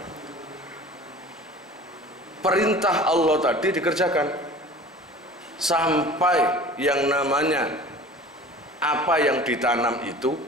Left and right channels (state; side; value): normal; both; correlation 0.42